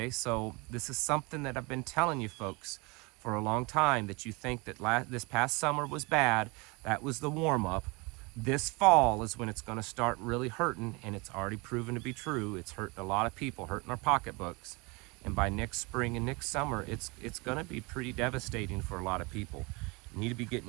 So this is something that I've been telling you folks for a long time, that you think that this past summer was bad. That was the warm-up. This fall is when it's going to start really hurting, and it's already proven to be true. It's hurting a lot of people, hurting our pocketbooks. And by next spring and next summer, it's going to be pretty devastating for a lot of people. You need to be getting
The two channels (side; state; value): left; quieter; 27.5 dB